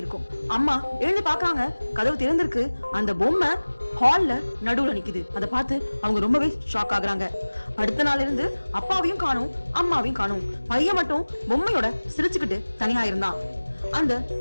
இருக்கும். அம்மா எழுந்து பாக்குறாங்க, கதவு திறந்திருக்கு. அந்த பொம்மை ஹால்ல நடுவுல நிக்குது. அதை பார்த்து அவங்க ரொம்பவே ஷாக் ஆகுறாங்க. அடுத்த நாள் இருந்து அப்பாவையும் காணும், அம்மாவையும் காணும். பையன் மட்டும் பொம்மையோட சிரிச்சுக்கிட்டு தனியா இருந்தான். அந்த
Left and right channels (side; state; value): both; inverted; correlation -1.00